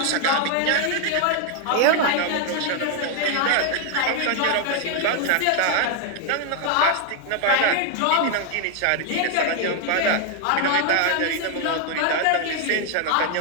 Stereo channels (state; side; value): different; both; correlation 0.00